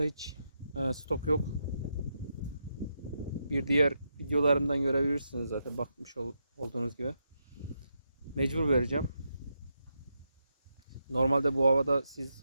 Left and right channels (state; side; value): inverted; both; correlation -0.83